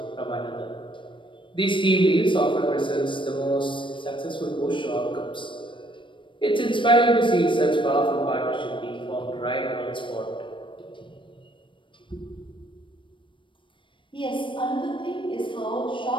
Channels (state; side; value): late; right; 0.24 ms